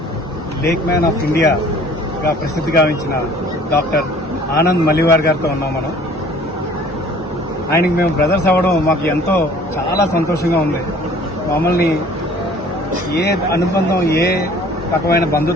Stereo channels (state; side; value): normal; both; correlation 0.52